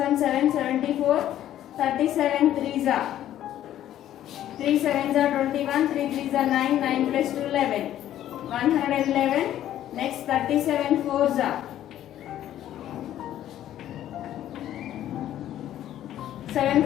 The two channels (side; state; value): right; quieter; 12.1 dB